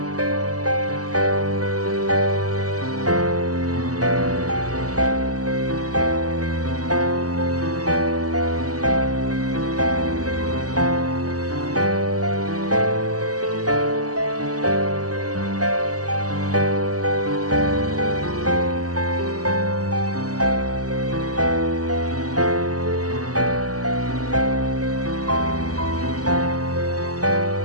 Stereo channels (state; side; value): late; left; 0.67 ms